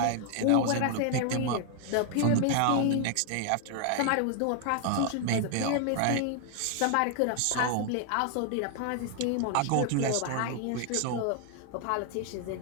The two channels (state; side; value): different; both; correlation 0.00